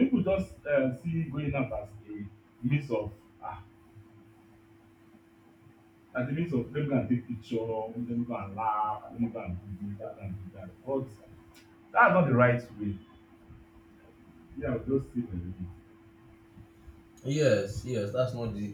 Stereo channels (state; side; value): identical; both; correlation 1.00